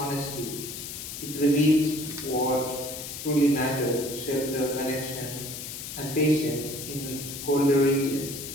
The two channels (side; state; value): left; noise; hiss, 8 dB below the sound